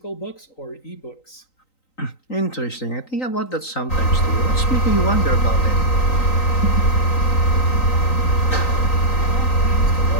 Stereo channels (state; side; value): late; right; 3.9 ms